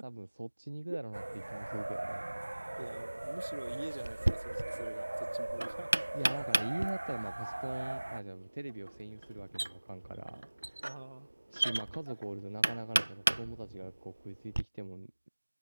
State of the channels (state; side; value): inverted; both; correlation -1.00